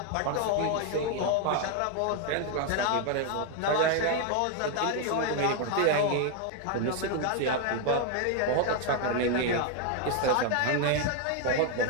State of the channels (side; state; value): both; different; correlation 0.01